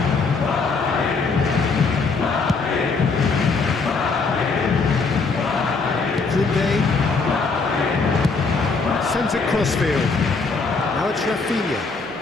Sends it crossfield. Now it's Rafinha.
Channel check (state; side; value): quieter; right; 4.4 dB